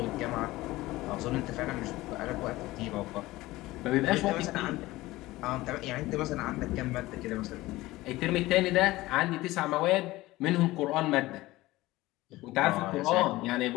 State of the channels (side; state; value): right; quieter; 18.5 dB